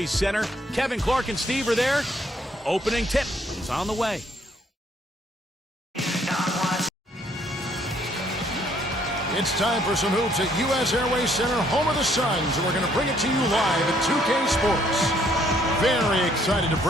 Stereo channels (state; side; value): normal; both; correlation 0.66